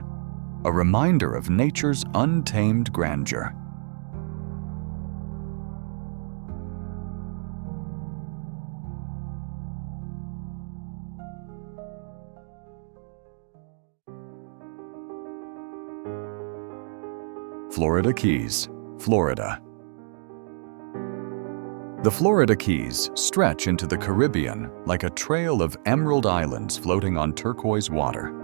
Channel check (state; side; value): silent; left; digital silence